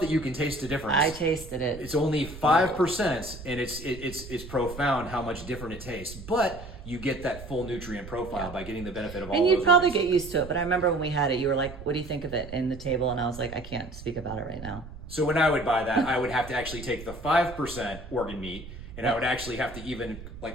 that you can taste the difference. I tasted it. It's only 5%, and it's profound how much different it tastes. But you get that full nutrient profile by getting the benefit of all. And those you'd probably organs. get used to it. But I remember when we had it, you were like, "What do you think of it?" in the table, and I was like, "I can't speak about it right now." So when I would buy that, I would have to actually take the 5% organ meat, and I would actually have to even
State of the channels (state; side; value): noise; right; rumble, 13 dB below the sound